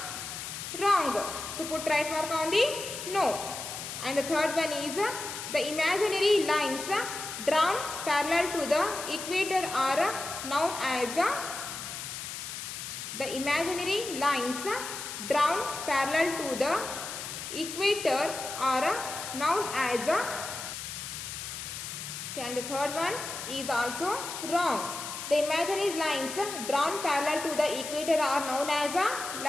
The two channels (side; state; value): left; noise; hiss, 7 dB below the sound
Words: wrong. So put right mark on the no. And the third one is the imaginary lines drawn parallel to the equator are known as the imaginary lines drawn parallel to the equator are known as a. Okay, and the third one is also wrong. The imaginary lines drawn parallel to the equator are known as